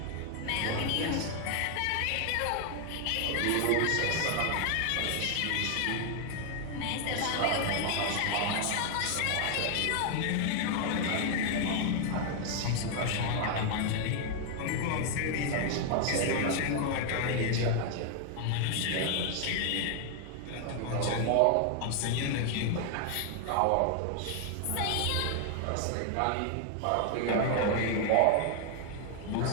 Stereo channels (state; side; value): different; both; correlation 0.00